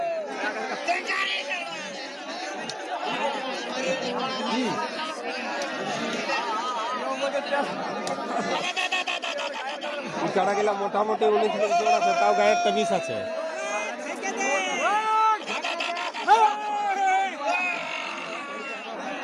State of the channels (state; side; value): identical; both; correlation 1.00